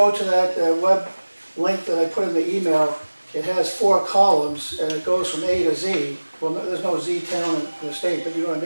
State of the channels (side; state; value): both; inverted; correlation -1.00